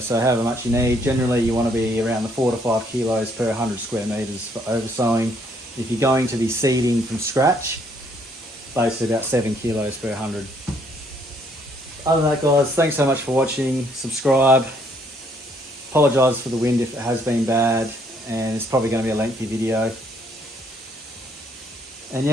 however much you need. Generally you want to be around the 4 to 5 kilos per 100 square meters for oversowing. If you're going to be seeding from scratch, basically about 7 kilos per 100. Other than that, guys, thanks so much for watching. Subscribe. Apologise for the wind if it has been bad, and it's probably going to be a lengthy video. And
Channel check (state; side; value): normal; both; correlation 0.67